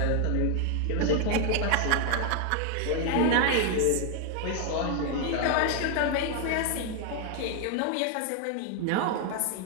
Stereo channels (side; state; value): both; different; correlation 0.01